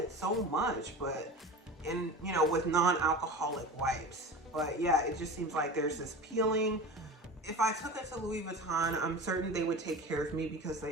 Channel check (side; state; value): both; normal; correlation 0.33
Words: so much, but you know, with non-alcoholic wipes. But yeah, it just seems like there's this peeling. If I took it to Louis Vuitton, I'm certain they would take care of me because